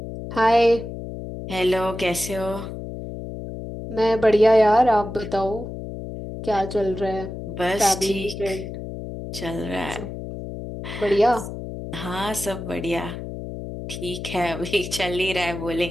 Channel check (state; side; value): noise; left; hum, 8 dB below the sound